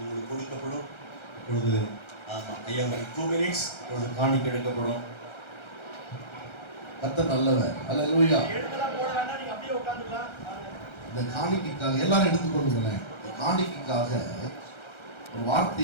கொடுக்கப்படும். இப்பொழுது ஐயா 2 minutes இப்பொழுது காணிக்கை எடுக்கப்படும். கர்த்தர் நல்லவர். அல்லேலூயா. இந்த காணிக்கைக்காக எல்லாரும் எடுத்துக்கொள்ளுங்களேன். இந்த காணிக்கைக்காக ஒரு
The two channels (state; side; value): late; right; 1.3 ms